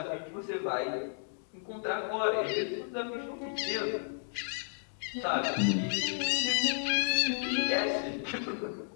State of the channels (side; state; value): right; silent; digital silence